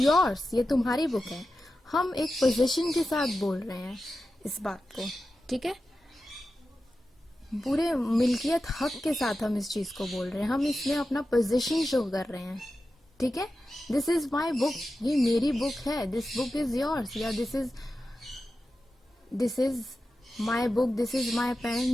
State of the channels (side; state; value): both; normal; correlation 0.92